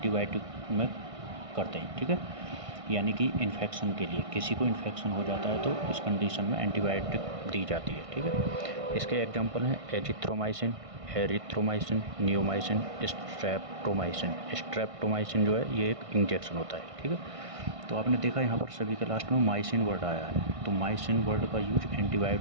में करते हैं, ठीक है, यानी कि इन्फेक्शन के लिए। किसी को इन्फेक्शन हो जाता है तो इस कंडीशन में एंटीबायोटिक दी जाती है, ठीक है। इसके एग्जांपल हैं azithromycin, erythromycin, neomycin, streptomycin. Streptomycin जो है ये एक इंजेक्शन होता है, ठीक है। तो आपने देखा यहाँ पर सभी के लास्ट में माइसिन वर्ड आया है, तो माइसिन वर्ड का यूज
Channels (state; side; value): late; left; 1.6 ms